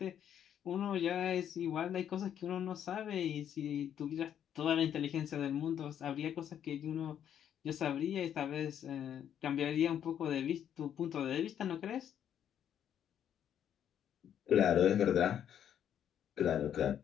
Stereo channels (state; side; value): quieter; right; 9.6 dB